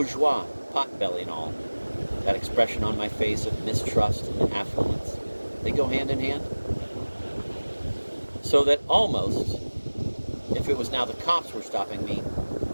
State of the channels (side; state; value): both; inverted; correlation -1.00